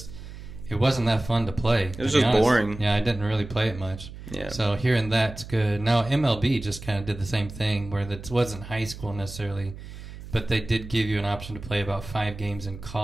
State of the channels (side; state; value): right; noise; hum, 13 dB below the sound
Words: it wasn't that fun to play. It was just boring. Yeah, I didn't really play it much. Yeah. So hearing that's good. Now, MLB just kind of did the same thing where it wasn't high school necessarily, but they did give you an option to play about 5 games in